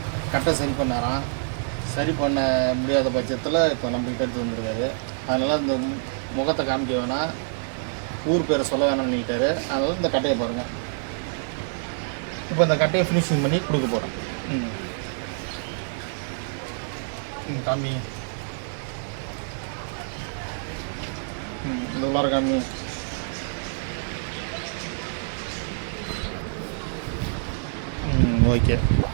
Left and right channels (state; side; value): silent; left; digital silence